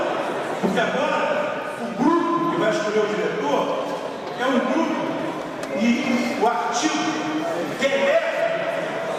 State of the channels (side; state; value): both; identical; correlation 1.00